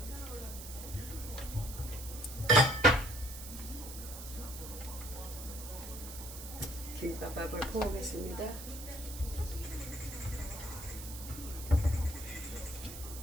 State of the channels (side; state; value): right; noise; hiss, 11 dB below the sound